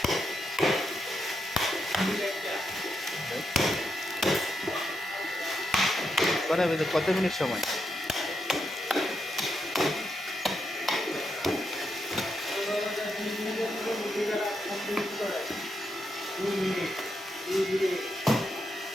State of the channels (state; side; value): normal; both; correlation 0.83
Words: কত মিনিট সময়?